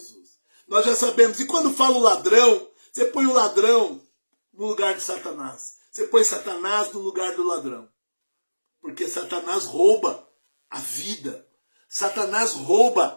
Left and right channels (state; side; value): inverted; both; correlation -1.00